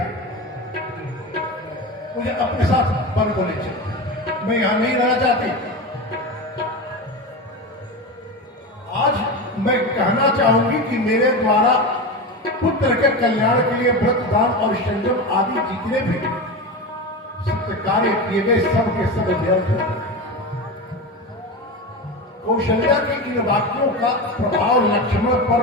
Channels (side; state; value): both; normal; correlation 0.23